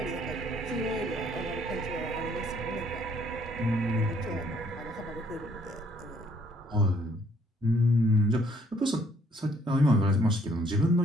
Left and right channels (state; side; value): normal; both; correlation 0.64